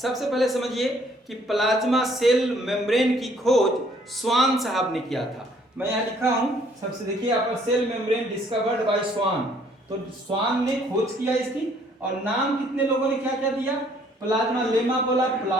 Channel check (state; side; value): normal; both; correlation 0.62